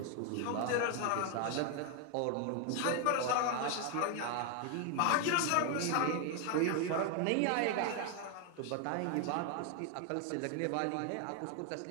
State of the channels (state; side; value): different; both; correlation 0.01